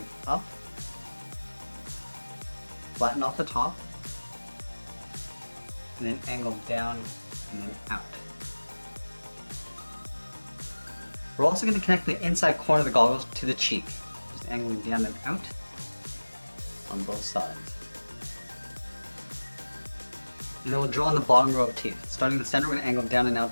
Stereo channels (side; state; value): both; inverted; correlation -1.00